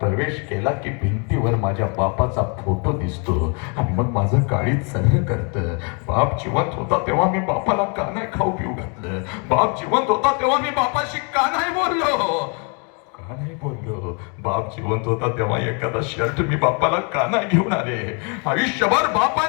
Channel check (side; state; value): right; quieter; 36.1 dB